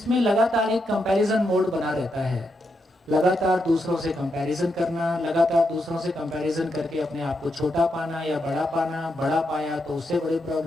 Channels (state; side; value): normal; both; correlation 0.82